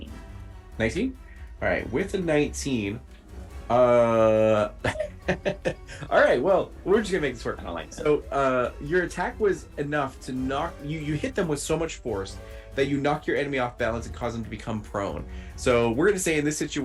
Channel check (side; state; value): both; identical; correlation 1.00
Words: 19? All right, with a 19, all right, well, we're just gonna make this work. I don't like that. So your attack was enough to knock you hit them with so much force that you knock your enemy off balance and cause them to become prone. So we're gonna say in this